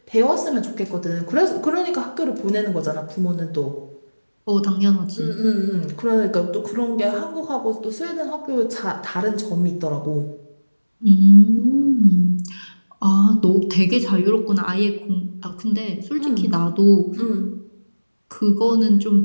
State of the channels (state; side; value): inverted; both; correlation -1.00